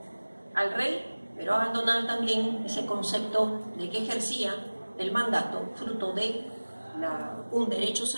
al rey, pero abandonar también ese concepto de que ejercía el mandato fruto de un derecho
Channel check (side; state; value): both; inverted; correlation -1.00